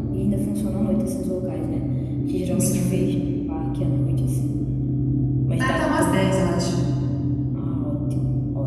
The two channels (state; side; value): identical; both; correlation 1.00